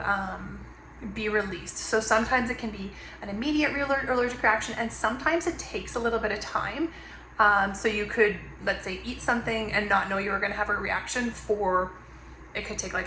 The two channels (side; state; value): both; identical; correlation 1.00